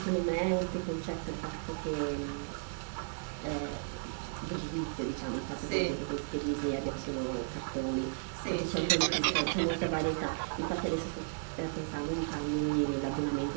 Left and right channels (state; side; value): silent; left; digital silence